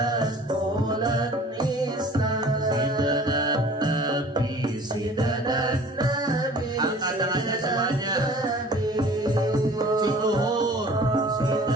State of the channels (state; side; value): normal; both; correlation 0.47